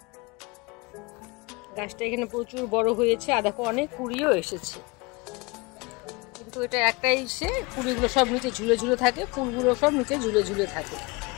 গাছটা এখানে প্রচুর বড় হয়েছে, আর দেখো অনেক কুড়িও এসেছে। কিন্তু এটা একটাই কুড়িগুলো সব নিচে ঝুলে ঝুলে থাকে, ফুলগুলো সব নিচে ঝুলে ঝুলে থাকে।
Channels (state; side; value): quieter; right; 26.3 dB